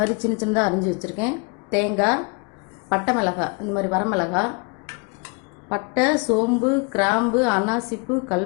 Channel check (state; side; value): quieter; right; 32.7 dB